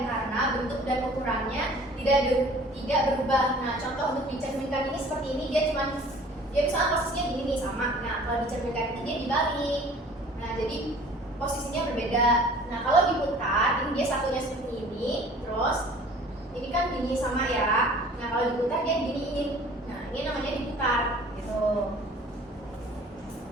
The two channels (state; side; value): normal; both; correlation 0.49